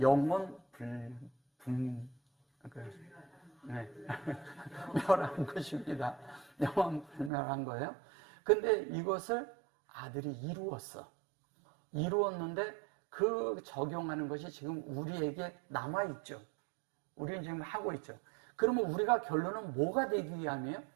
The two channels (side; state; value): left; drops out; at 7.3 s